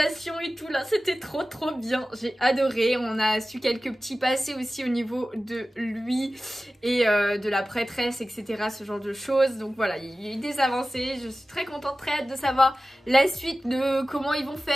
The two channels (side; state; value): both; normal; correlation 0.95